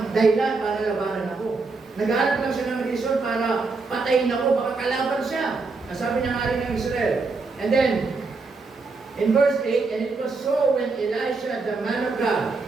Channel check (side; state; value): left; quieter; 4.0 dB